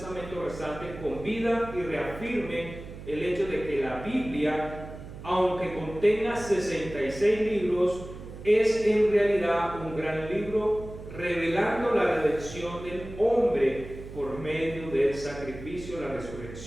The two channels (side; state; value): right; noise; hum, 13 dB below the sound